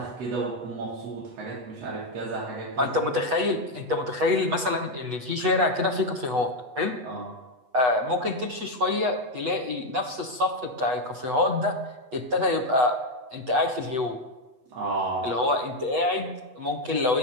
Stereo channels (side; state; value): left; late; 8.1 ms